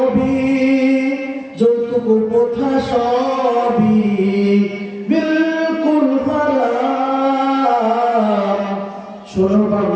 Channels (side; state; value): both; identical; correlation 1.00